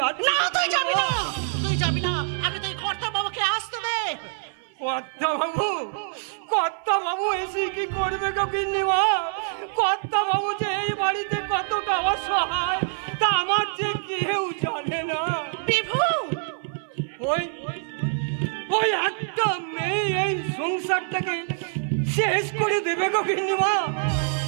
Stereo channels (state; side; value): silent; left; 58 dB below the other